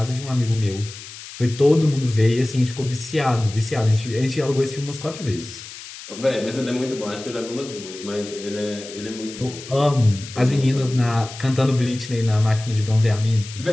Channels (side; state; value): left; noise; hiss, 14 dB below the sound